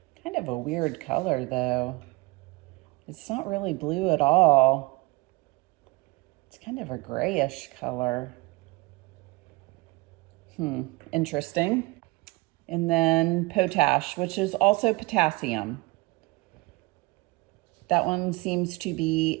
Kind of a weird color though. It's not really blue at all. It's kind of a grayish color. Interesting. And then potash, which is also potassium. That one seems to be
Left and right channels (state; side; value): quieter; left; 23.2 dB